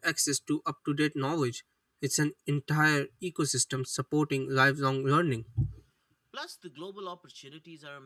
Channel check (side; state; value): both; identical; correlation 1.00